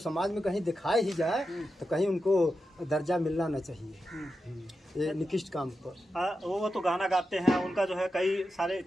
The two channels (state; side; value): normal; both; correlation 0.89